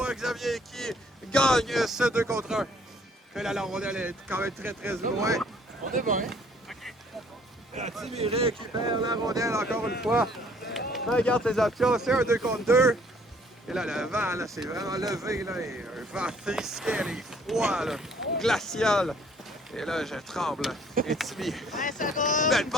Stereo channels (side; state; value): both; normal; correlation 0.60